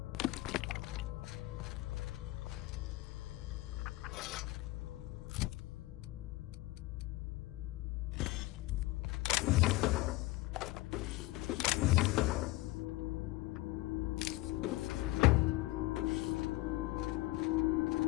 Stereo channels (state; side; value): quieter; right; 19.4 dB